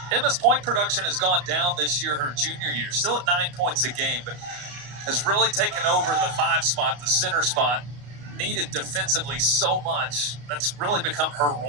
Emma's point production has gone down this year, her junior year. Still at 9 points a game, but has really taken over the 5 spot, the center spot, needed defensively so much. That's really become her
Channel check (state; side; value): late; left; 34 ms